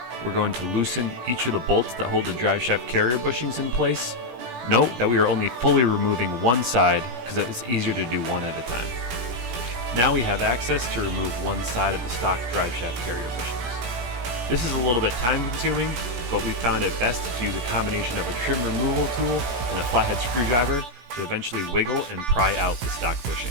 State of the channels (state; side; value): late; left; 17 ms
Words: we're going to loosen each of the bolts that hold the driveshaft carrier bushings in place. Note that we are only fully removing one side because it's easier to do one at a time. Now we have access to remove one side of the stock driveshaft carrier bushings. This is a little bit time consuming, but we found it best to use a combination of a trim removal tool and a flathead screwdriver to eventually wiggle and pry out the stock